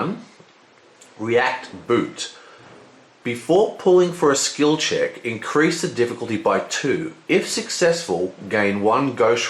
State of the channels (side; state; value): both; identical; correlation 1.00